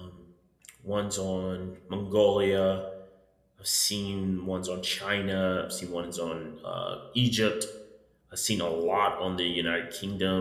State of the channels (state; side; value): identical; both; correlation 1.00